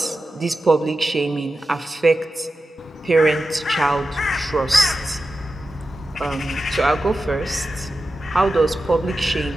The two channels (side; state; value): both; normal; correlation 0.92